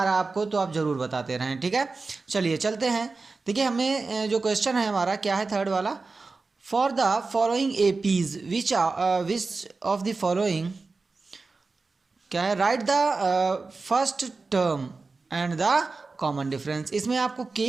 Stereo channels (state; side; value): quieter; left; 4.0 dB